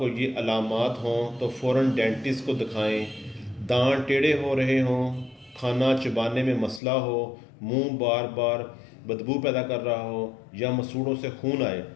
یہ علامات ہوں تو فوراً ڈینٹسٹ کو دکھائیں۔ دانت ٹیڑھے ہو رہے ہوں، کھانا چبانے میں مسئلہ ہو، منہ بار بار بدبو پیدا کر رہا ہو یا مسوڑوں سے خون آئے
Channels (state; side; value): drops out; right; at 6.8 s